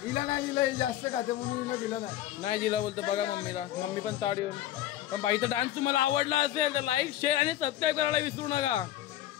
हिला नाही दिलं, जास्त खाते म्हणून हिला दिलं नाही दिला बोलतो. बघा मम्मीला, मम्मी पण ताड येऊन. पण बाईचा डान्स तुम्हाला आवडला असेल तर लाईक, शेअर आणि सबस्क्राईब करायला विसरू नका.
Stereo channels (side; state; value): right; quieter; 13.3 dB